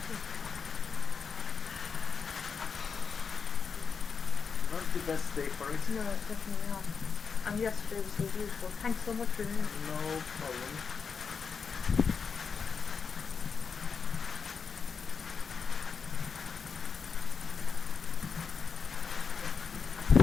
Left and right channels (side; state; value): right; quieter; 5.8 dB